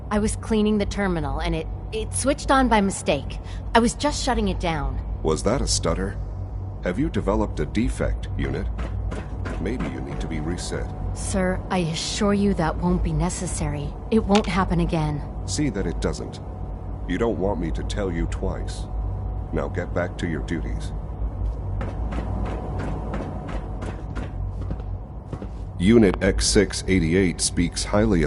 I was cleaning the terminal, and it switched on by mistake. I was just shutting it down. Was that a stutter? Have you developed a defect, Unit? Maybe you need to be reset. Sir, I assure you that won't be necessary. It won't happen again. See that it doesn't. You don't want me to tell you twice. Now get back to your duties. Unit X688 speaks highly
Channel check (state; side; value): identical; both; correlation 1.00